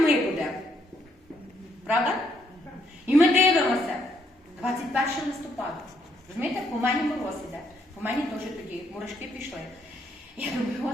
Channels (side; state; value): both; normal; correlation 0.73